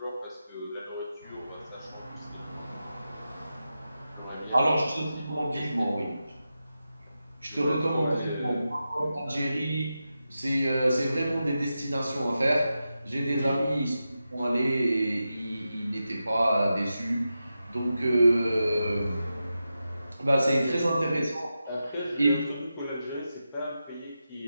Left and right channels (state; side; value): inverted; both; correlation -0.90